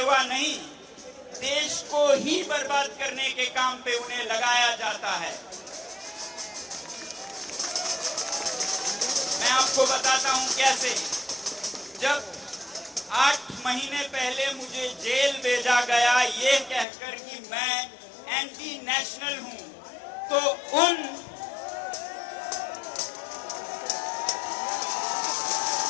नहीं, देश को ही बर्बाद करने के काम पे उन्हें लगाया जाता है। मैं आपको बताता हूं कैसे। जब 8 महीने पहले मुझे जेल भेजा गया ये कहकर कि मैं एंटी नेशनल हूं, तो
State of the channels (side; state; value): right; drops out; at 16.9 s